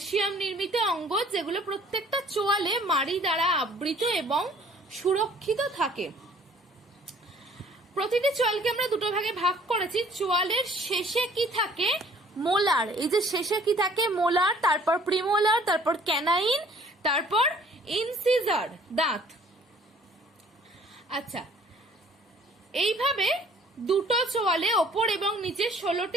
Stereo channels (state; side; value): normal; both; correlation 0.55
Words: নির্মিত অঙ্গ, যেগুলো প্রত্যেকটা চোয়ালে মাড়ি দ্বারা আবৃত এবং সুরক্ষিত থাকে। প্রতিটি চোয়ালকে আমরা দুটো ভাগে ভাগ করেছি। চোয়ালের শেষে কি থাকে? মোলার। এই যে শেষে কি থাকে? মোলার, তারপর প্রিমোলার, তারপর ক্যানাইন, তারপর ইনসিজার, দাঁত। আচ্ছা, এইভাবে দুটো চোয়ালে ওপর এবং নিচে